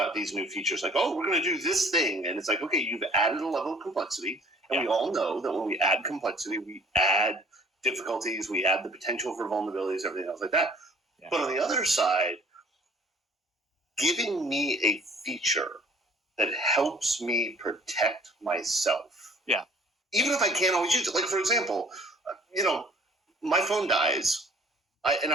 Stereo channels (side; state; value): both; normal; correlation 0.54